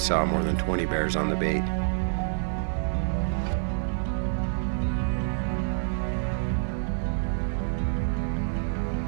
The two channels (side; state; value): left; silent; digital silence